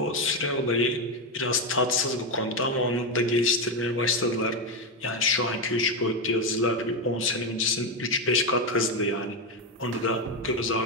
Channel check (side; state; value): both; normal; correlation 0.09